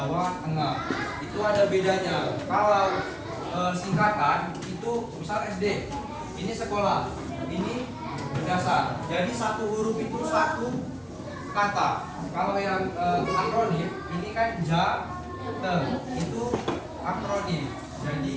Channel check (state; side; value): identical; both; correlation 1.00